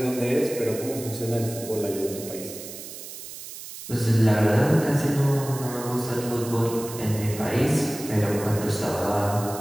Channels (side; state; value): right; noise; hiss, 12 dB below the sound